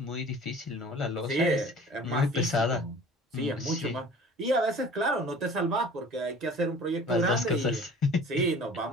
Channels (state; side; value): normal; both; correlation 0.45